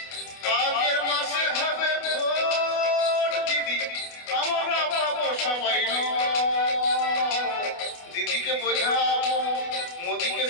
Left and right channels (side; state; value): right; late; 28 ms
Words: আগের মাসে হবে ভোট দিদি, আমরা পাবো সবাই। দিদিকে বোঝাবো, মোদিকে